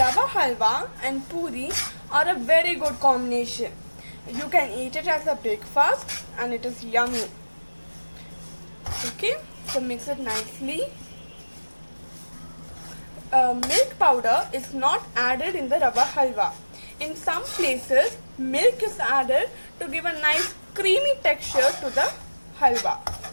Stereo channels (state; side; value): inverted; both; correlation -1.00